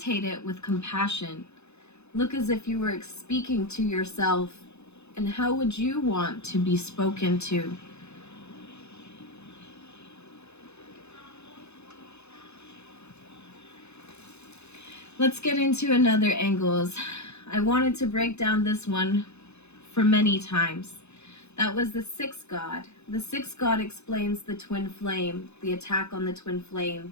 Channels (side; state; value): right; late; 0.81 ms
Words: it with compassion. Look as if you were speaking to yourself, and how would you want to be spoken to? Let's get into another angles. I wanted to break down this one for many times. That was the sixth god. The sixth god explains the twin flame, the attack on the twin